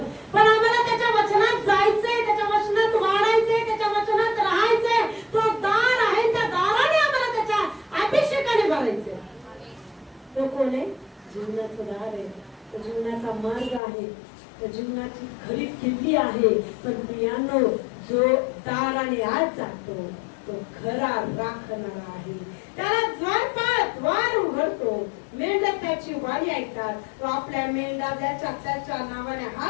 पण आम्हाला त्याच्या वचनात जायचंय, त्याच्या वचनात वाढायचंय, त्याच्या वचनात राहायचंय. तो दार आहे, त्या दाराने आम्हाला त्याच्या अभिषेकाने भरायचंय. तो कोण आहे, जीवनाचं दार आहे, तो जीवनाचा मार्ग आहे, तो जीवनाची खरी किल्ली आहे. पण प्रियांनो, जो दाराने आत जातो तो खरा राखणारा आहे. त्याला द्वार उघडतो, मेंढ्या त्याची वाणी ऐकतात. तो आपल्या मेंढ्या त्याच्या नावाने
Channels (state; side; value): drops out; right; at 13.8 s